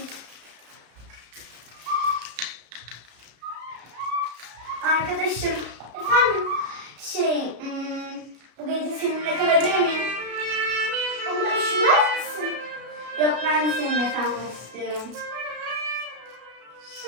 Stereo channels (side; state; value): left; late; 33 ms